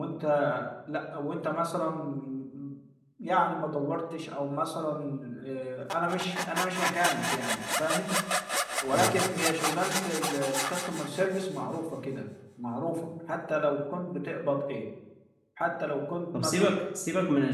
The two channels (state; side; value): identical; both; correlation 1.00